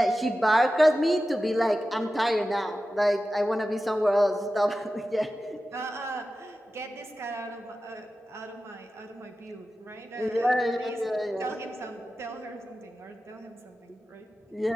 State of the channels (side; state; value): both; normal; correlation 0.94